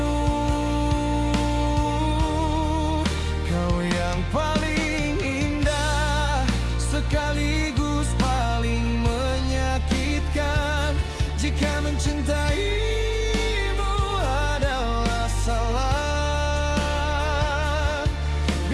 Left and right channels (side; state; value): both; identical; correlation 1.00